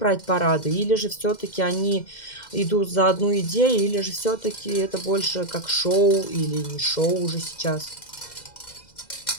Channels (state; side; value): late; right; 2.1 ms